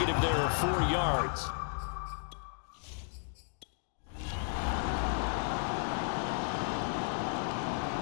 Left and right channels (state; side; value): silent; right; digital silence